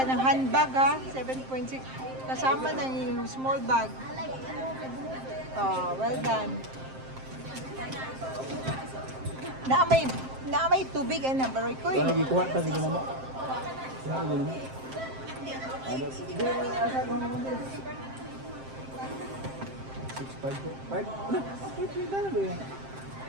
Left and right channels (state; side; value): late; left; 7.6 ms